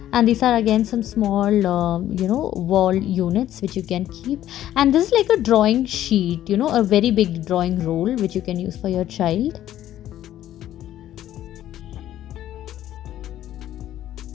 And these are again some small wall units which you can keep. And this is like a drawing sheet, a very big drawing roll which you can use for your child.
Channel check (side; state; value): right; quieter; 12.5 dB